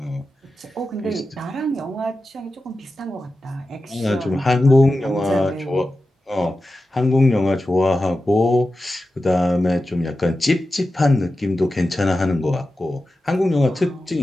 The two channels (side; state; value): both; normal; correlation 0.92